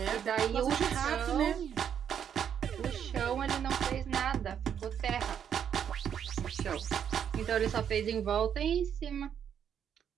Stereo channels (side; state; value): left; quieter; 8.5 dB